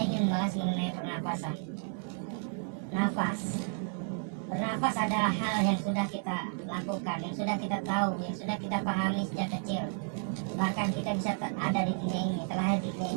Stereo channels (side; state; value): left; silent; 56 dB below the other